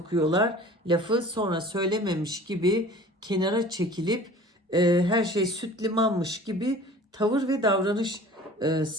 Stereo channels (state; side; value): normal; both; correlation 0.45